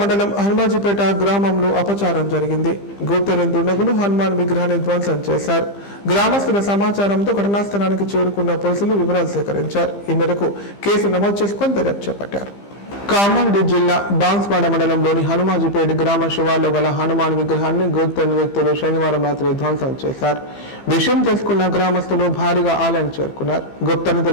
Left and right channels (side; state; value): right; late; 15 ms